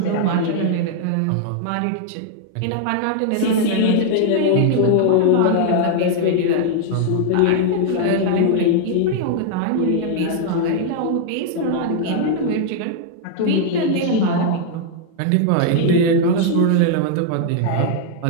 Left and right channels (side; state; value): both; different; correlation 0.00